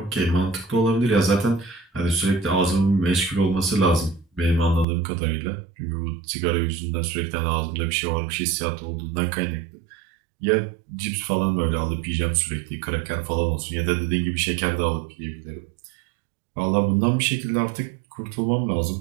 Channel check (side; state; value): left; drops out; at 4.9 s